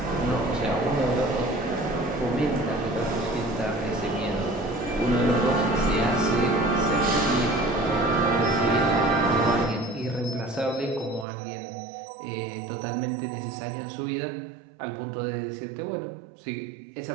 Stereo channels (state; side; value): drops out; left; at 11.2 s